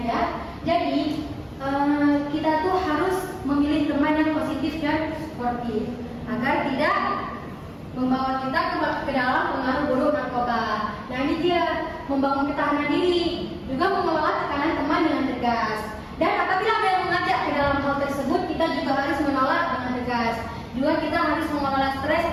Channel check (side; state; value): both; identical; correlation 1.00